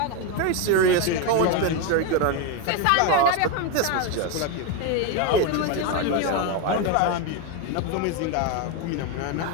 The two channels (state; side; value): different; both; correlation 0.02